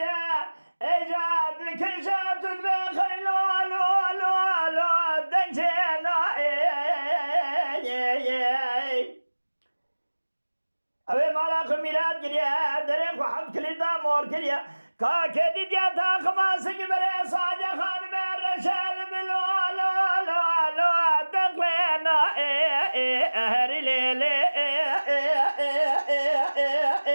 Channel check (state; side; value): inverted; both; correlation -1.00